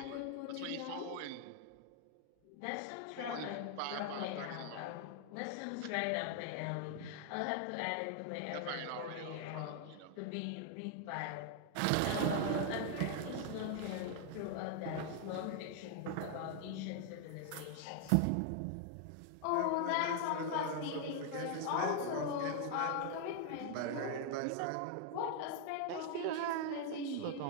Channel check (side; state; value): both; different; correlation 0.00